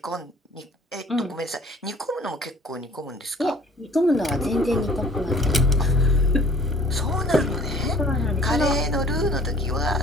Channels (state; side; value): normal; both; correlation 0.52